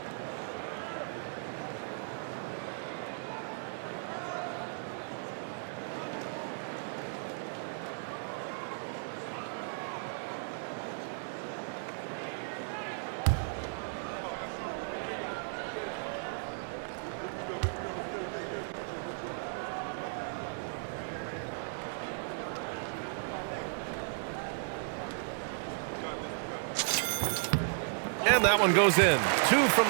And that one goes in. 2 from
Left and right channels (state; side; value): silent; left; digital silence